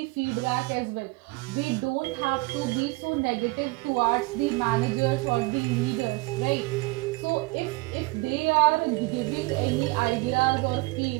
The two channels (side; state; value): left; quieter; 24.2 dB